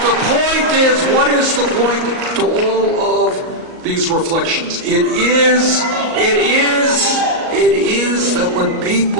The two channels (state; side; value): late; left; 38 ms